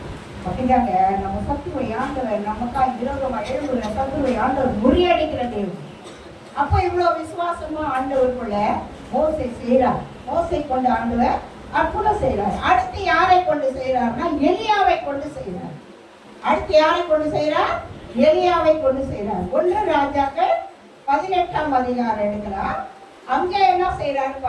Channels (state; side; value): identical; both; correlation 1.00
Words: அப்படிதாங்க. நம்ம சத்துருவை ஆண்டவர் நமக்கா விரோதமா எழுதுற சத்துருவை ஆண்டவர் முறியடிக்கிற தேவன். அப்ப இவ்வளவு விசுவாசமா ஆண்டவருக்குள்ள மோசை செய்யறார். மோசை கொண்டு ஆண்டவர் அற்புதம் செய்யறார். அடுத்து யாரை கொண்டு செய்யறாருன்னா எலியாவை கொண்டு செய்யறார். அடுத்து யாரை கொண்டு செய்யறார்? எலியாவை கொண்டு செய்யறார். 1 ராஜாக்கள் 18ஆம் அதிகாரம் எடுக்கலாம். அங்க என்ன செய்யறாரு